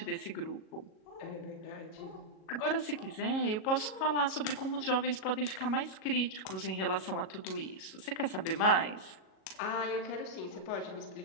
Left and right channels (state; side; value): late; right; 37 ms